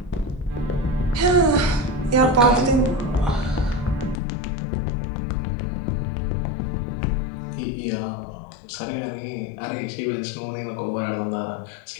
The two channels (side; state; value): right; drops out; at 4.2 s